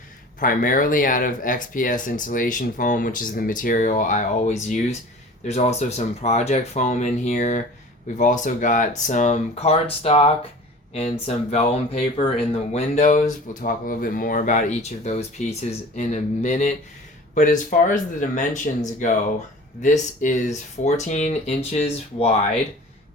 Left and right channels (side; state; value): both; normal; correlation 0.42